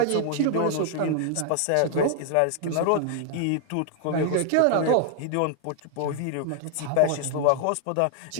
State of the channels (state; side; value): different; both; correlation 0.00